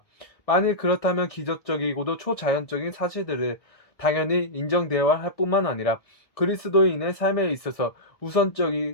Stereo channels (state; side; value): late; right; 1.7 ms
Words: 만일 그렇다면 기적적이고도 초자연적인 사실들을 당연히 인정되어야 할 뿐만 아니라 그리스도인의 삶에 있어서